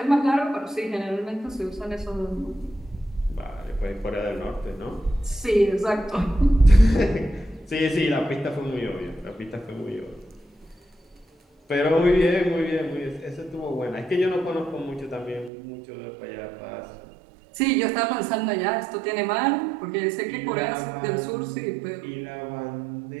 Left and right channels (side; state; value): left; drops out; at 15.5 s